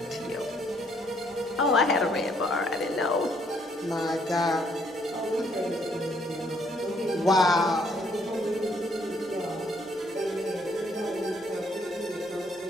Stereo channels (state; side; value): normal; both; correlation 0.67